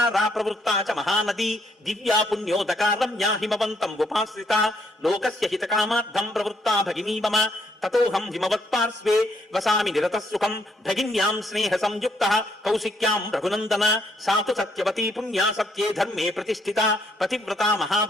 ప్రవృత్తా చ మహానదీ దివ్యా పుణ్యోదకారం యా హిమవంతం ఉపాశ్రిత లోకస్య హితకామార్థం ప్రవృత్తా భగినీ మమ తతోహం హిమవత్పార్శ్వే వసామి నిరతః సుఖం భగిన్యాం స్నేహ సంయుక్తః కౌశిక్యాం రఘునందన సాతు సత్యవతీ పుణ్యా సత్యే ధర్మే ప్రతిష్ఠిత పతివ్రతా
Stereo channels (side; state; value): both; normal; correlation 0.71